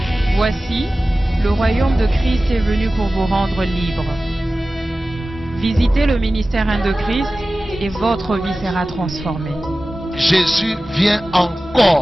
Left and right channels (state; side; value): normal; both; correlation 0.96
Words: Voici, le royaume de Christ est venu pour vous rendre libre. Visitez le ministère 1 de Christ et votre vie sera transformée. Jésus vient